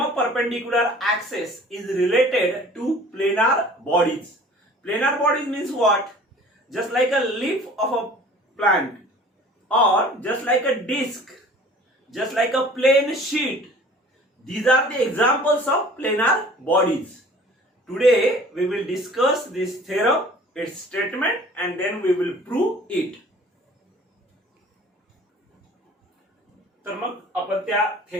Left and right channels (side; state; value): both; normal; correlation 0.48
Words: perpendicular axis is related to planar bodies. Planar bodies means what? Just like a leaf of a plant, or just like a disc, just like a plain sheet. These are the examples of planar bodies. Today we will discuss this theorem, its statement, and then we will prove it. तर मग आपण त्या